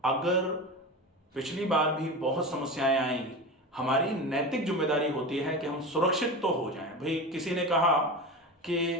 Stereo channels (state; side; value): normal; both; correlation 0.26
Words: अगर पिछली बार भी बहुत समस्याएं आई, हमारी नैतिक जिम्मेदारी होती है कि हम सुरक्षित तो हो जाएं। भाई किसी ने कहा कि